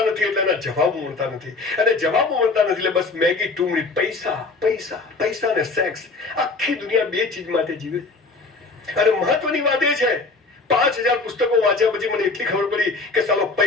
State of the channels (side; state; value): right; quieter; 3.8 dB